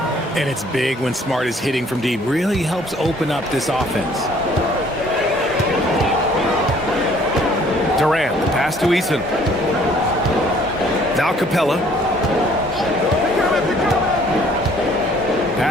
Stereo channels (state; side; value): normal; both; correlation 0.58